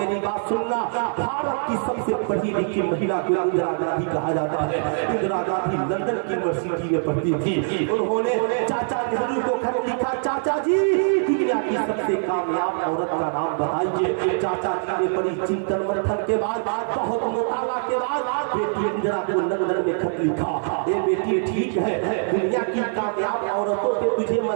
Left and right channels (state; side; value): silent; left; digital silence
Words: بات سننا، بھارت کی سب سے پڑھی لکھی مہیلا کو اندرا گاندھی کہا جاتا ہے۔ اندرا گاندھی لندن کی یونیورسٹی میں پڑھتی تھی، انہوں نے چاچا نہرو کو خط لکھا، چاچا جی دنیا کی سب سے کامیاب عورت کا نام بتائیے۔ چاچا جی نے بڑی چنتن منتھن کے بعد بہت مطالعہ کے بعد بیٹی اندرا کو لندن میں خط لکھا، اے بیٹی ٹھیک ہے دنیا کی کامیاب عورتوں پہ تجھے